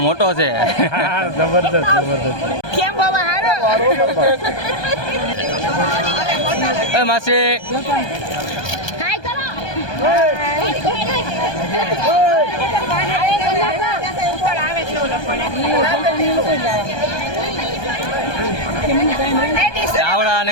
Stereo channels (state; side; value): late; right; 1.2 ms